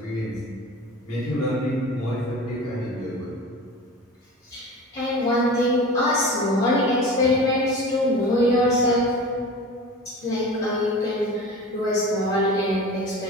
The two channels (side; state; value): both; normal; correlation 0.35